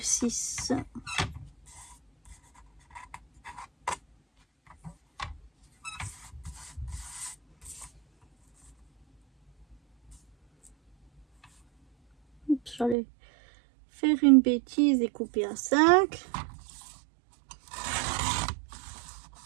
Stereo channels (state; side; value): drops out; left; at 13.0 s